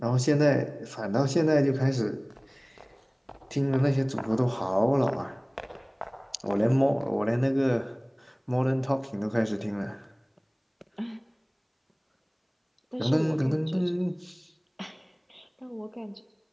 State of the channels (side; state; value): both; identical; correlation 1.00